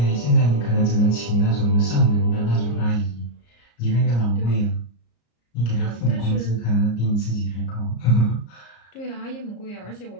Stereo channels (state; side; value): late; right; 34 ms